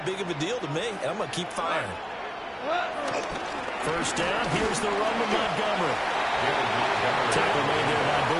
big of a deal to me, and I'm going to keep firing. First down, here's the run with Montgomery. Tackle made there by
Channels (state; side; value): identical; both; correlation 1.00